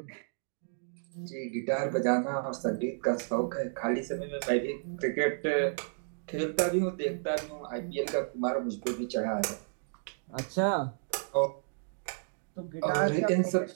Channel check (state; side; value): silent; left; digital silence